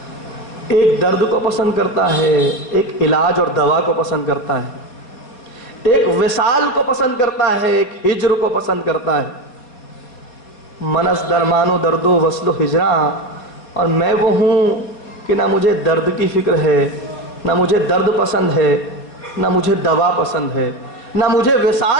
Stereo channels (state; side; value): late; right; 4.2 ms